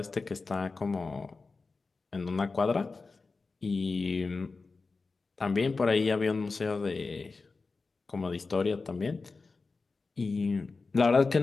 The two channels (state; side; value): quieter; right; 4.1 dB